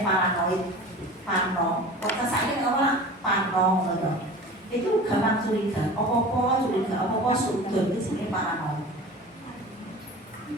paranoid, parno. Kok kesane ora parno ngono. Itu gampang curiga. Apa-apa curiga, apa-apa sudut itu jenenge paranoid.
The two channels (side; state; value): both; normal; correlation 0.38